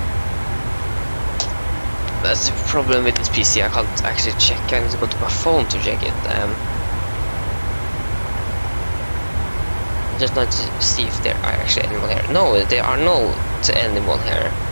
That's the problem with this PC. I can't actually check. I need to go to my phone to check it. Just not to see if there are actually anyone here. No, there are no anyone here.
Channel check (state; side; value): inverted; both; correlation -1.00